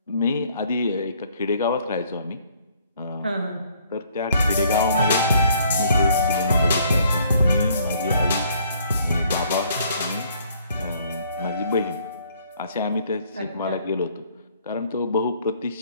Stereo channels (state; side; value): inverted; both; correlation -0.62